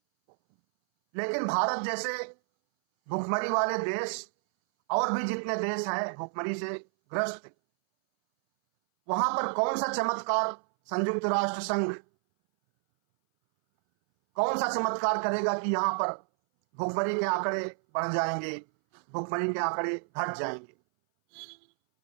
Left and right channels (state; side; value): silent; left; 58 dB below the other